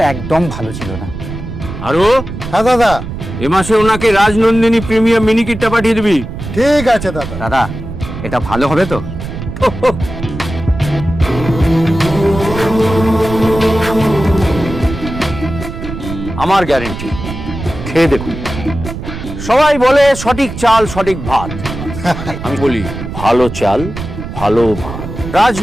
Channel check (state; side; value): noise; right; rumble, 9 dB below the sound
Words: একদম ভালো ছিল না। আরো হ্যাঁ দাদা, এ মাসে ওনাকে রাজনন্দিনী প্রিমিয়াম মিনিকেটটা পাঠিয়ে দিবি। ঠিক আছে দাদা। দাদা, এটা ভালো হবে তো? আমার গ্যারেন্টি, খেয়ে দেখুন। সবাই বলে সঠিক চাল সঠিক ভাত, আমি বলি ভালো চাল ভালো ভাত।